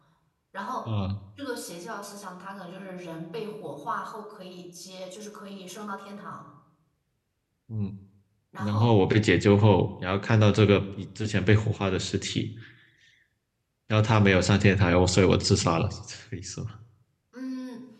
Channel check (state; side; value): identical; both; correlation 1.00